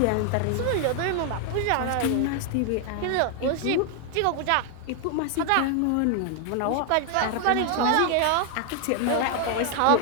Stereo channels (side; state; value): both; different; correlation 0.00